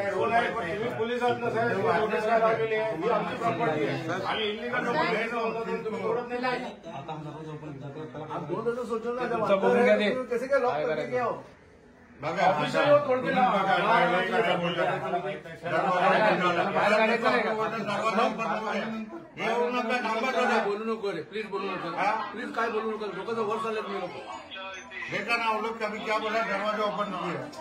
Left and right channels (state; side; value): identical; both; correlation 1.00